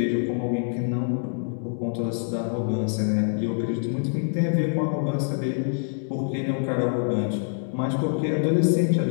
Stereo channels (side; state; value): right; silent; 61 dB below the other